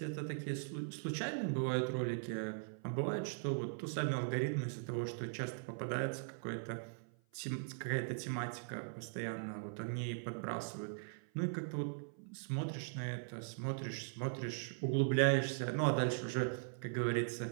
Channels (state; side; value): silent; left; 51 dB below the other